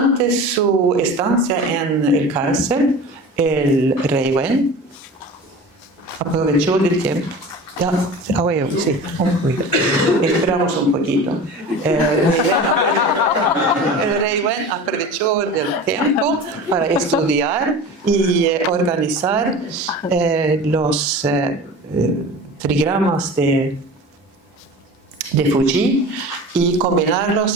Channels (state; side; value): normal; both; correlation 0.35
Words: su estancia en el cárcel, el rey Wen aprovechó del tiempo. Ya, sí, un poquito. Esperamos un poquito. El rey Wen aprovechó del tiempo para estudiar y organizar los trigramas de Fuji y